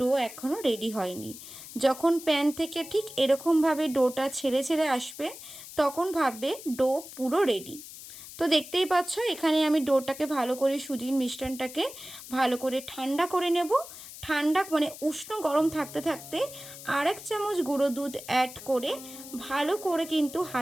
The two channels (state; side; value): noise; left; hiss, 14 dB below the sound